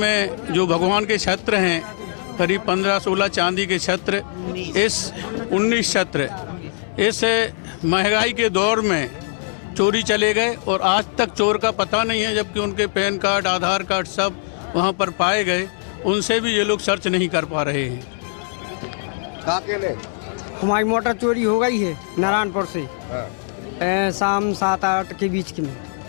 जो भगवान के छत्र हैं, करीब 15-16 चांदी के छत्र, 19 छत्र, इस महंगाई के दौर में चोरी चले गए और आज तक चोर का पता नहीं है, जबकि उनके पैन कार्ड, आधार कार्ड सब वहां पर पाए गए। उनसे भी ये लोग सर्च नहीं कर पा रहे हैं। हमारी मोटर चोरी हो गई है नारायणपुर से, शाम 7-8 के बीच की में,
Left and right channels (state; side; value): silent; right; 63 dB below the other